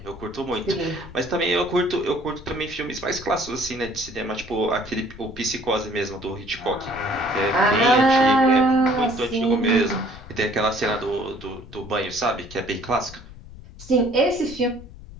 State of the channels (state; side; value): noise; left; rumble, 17 dB below the sound